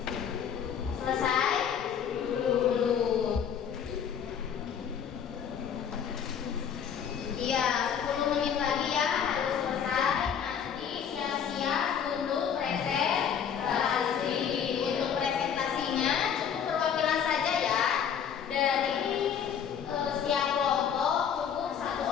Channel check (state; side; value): quieter; right; 8.0 dB